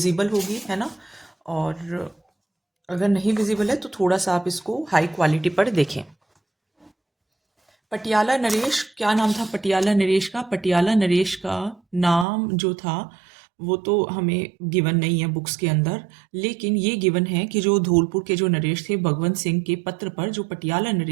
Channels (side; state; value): left; drops out; at 12.2 s